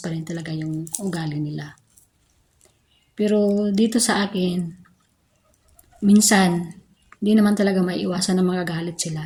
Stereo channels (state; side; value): identical; both; correlation 1.00